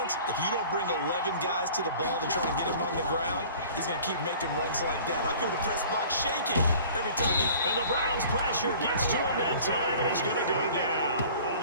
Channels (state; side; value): inverted; both; correlation -0.47